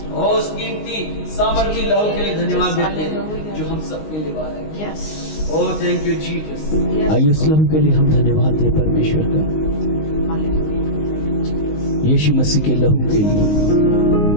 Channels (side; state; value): right; late; 19 ms